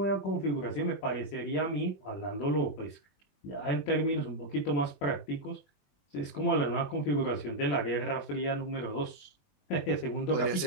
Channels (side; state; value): right; late; 21 ms